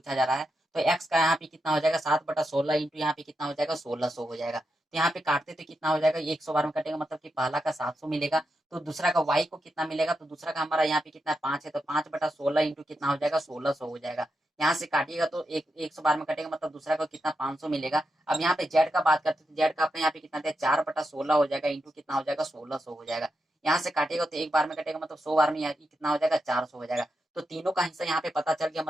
जा रहा है, तो एक्स का यहाँ पे कितना हो जाएगा, 7/16 इंटू यहाँ पे कितना हो जाएगा, 1600 हो जाएगा। तो यहाँ पे काटते तो कितना हो जाएगा, 100 बार में कटेगा, मतलब कि पहला का 700 मिलेगा, तो दूसरा का वाई को कितना मिलेगा, तो दूसरा का हमारा यहाँ पे कितना 5 है, तो 5/16 इंटू कितना हो जाएगा, 1600 हो जाएगा। यहाँ से काटिएगा तो 100 बार में कटेगा, मतलब दूसरा को कितना 500 मिलेगा। अब यहाँ पे जेड का बात करते हैं, तो जेड का अपने यहाँ पे कितना दिया, 4/16 हो जाएगा इंटू कितना हो जाएगा, 1600 हो जाएगा। यहाँ से काटेगा तो एक बार में कटेगा, मतलब 100 बार में कितना हो जाएगा, 400 हो जाएगा। तो तीनों का हिस्सा यहाँ पे पता चल गया,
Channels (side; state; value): both; normal; correlation 0.86